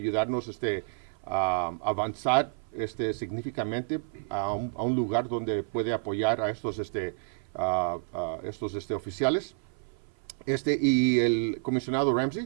a avanzar significativamente a un lugar donde puede apoyar a estos oficiales. Y el comisionado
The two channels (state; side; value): silent; left; 56 dB below the other